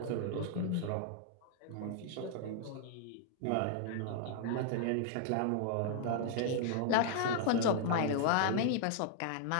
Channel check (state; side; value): different; both; correlation 0.00